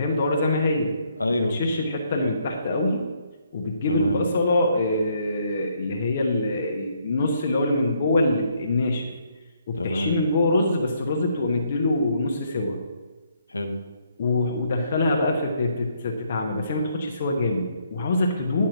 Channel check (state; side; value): inverted; both; correlation -0.71